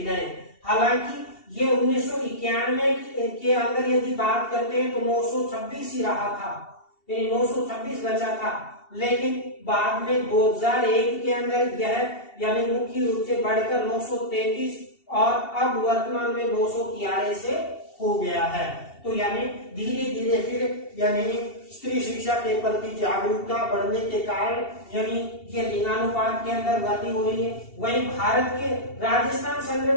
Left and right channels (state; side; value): late; right; 2.7 ms